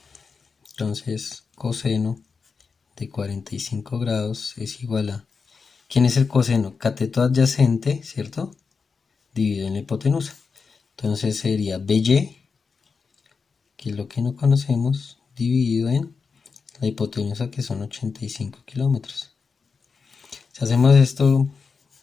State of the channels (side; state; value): right; quieter; 5.1 dB